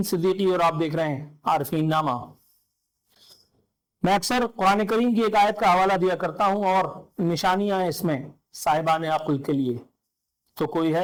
صدیقی اور آپ دیکھ رہے ہیں عارفین نامہ۔ میں اکثر قرآن کریم کی ایک آیت کا حوالہ دیا کرتا ہوں اور نشانیاں ہیں اس میں صاحبان عقل کے لیے، تو کوئی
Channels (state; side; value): identical; both; correlation 1.00